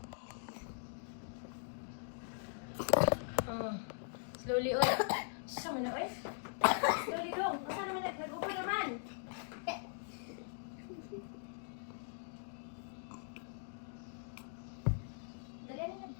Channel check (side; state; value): right; silent; digital silence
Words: Slowly oy. Sama na oy. Slowly dong. Asa naman nag-upo naman? Dali na